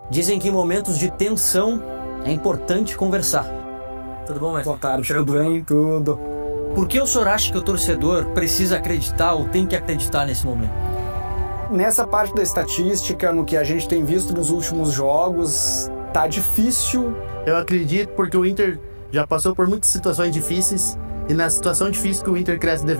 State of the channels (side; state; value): both; inverted; correlation -1.00